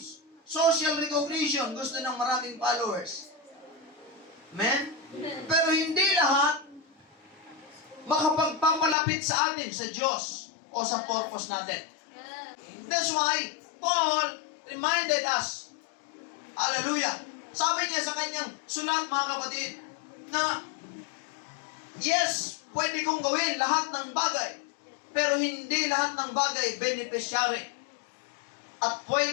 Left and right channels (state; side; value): drops out; right; at 9.0 s